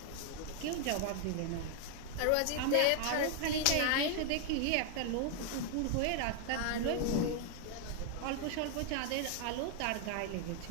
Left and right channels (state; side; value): different; both; correlation 0.00